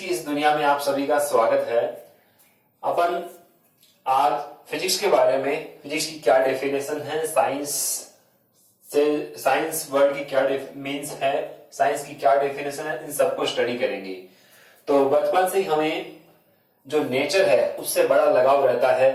इस दुनिया में आप सभी का स्वागत है। अपन आज फिजिक्स के बारे में, फिजिक्स की क्या डेफिनेशन है, साइंस वर्ल्ड की क्या मीन्स है, साइंस की क्या डेफिनेशन है, इन सबको स्टडी करेंगे। तो बचपन से हमें जो नेचर है उससे बड़ा लगाव रहता है।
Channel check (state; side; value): identical; both; correlation 1.00